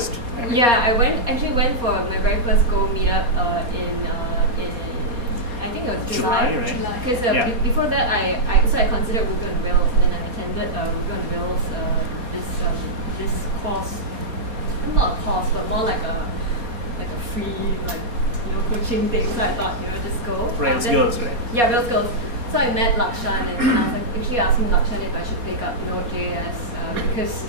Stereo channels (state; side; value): late; left; 4.2 ms